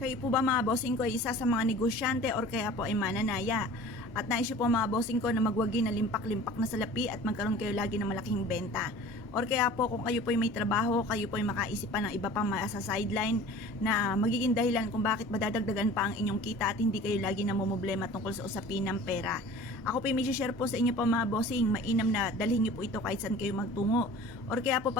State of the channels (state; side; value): normal; both; correlation 0.43